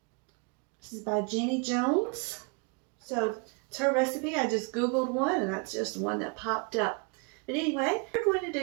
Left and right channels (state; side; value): quieter; left; 32.6 dB